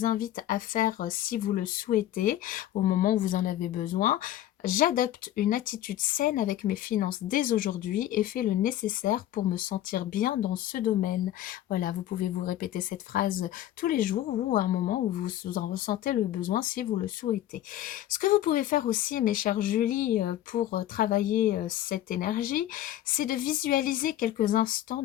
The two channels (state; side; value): quieter; right; 13.0 dB